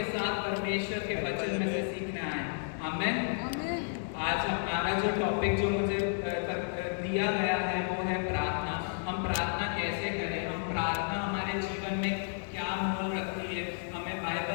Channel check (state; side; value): silent; right; digital silence